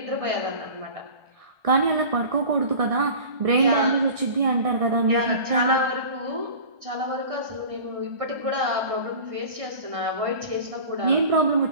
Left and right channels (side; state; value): left; late; 1.6 ms